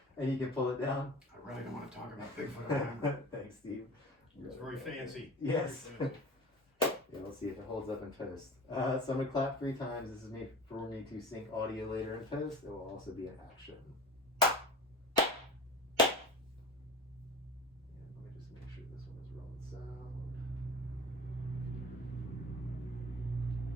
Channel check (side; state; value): both; normal; correlation 0.37